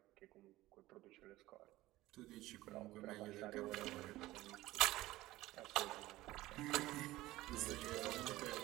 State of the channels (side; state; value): left; quieter; 17.3 dB